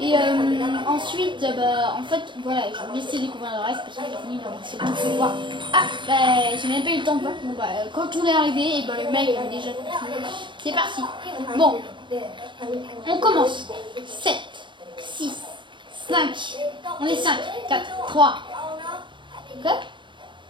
ensuite, en fait, voilà, je vais laisser découvrir le reste parce que j'ai fini c'est bon, je vais voir. Ah, j'ai même pas eu le temps de voir. Bon, quand on est arrivé, et le mec avait déjà tout. C'est parti. Bon, on commence. 7, 6, 5. On est 5, 4, 3. Ok?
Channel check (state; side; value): late; left; 0.23 ms